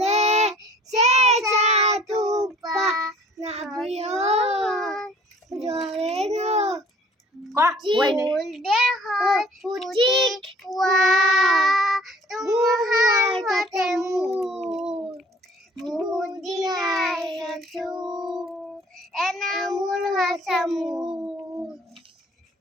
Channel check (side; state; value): both; normal; correlation 0.54